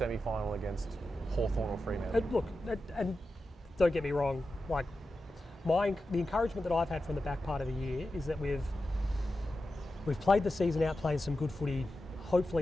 against Hawthorn or Fremantle. Look, and don't get me wrong, like the encouragement that I've had from the back part of the year is that we've played the season out playing some good footy.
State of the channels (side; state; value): both; normal; correlation 0.91